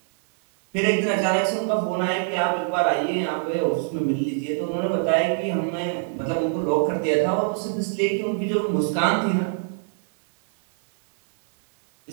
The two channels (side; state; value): left; silent; 60 dB below the other